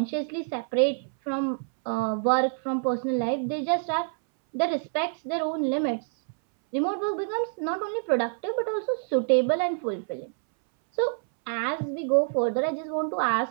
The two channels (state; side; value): silent; left; 60 dB below the other